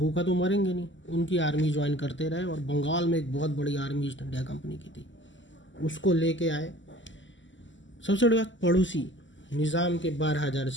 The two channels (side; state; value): right; late; 0.54 ms